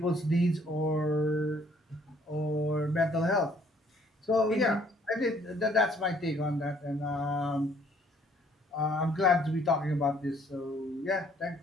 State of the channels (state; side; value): normal; both; correlation 0.62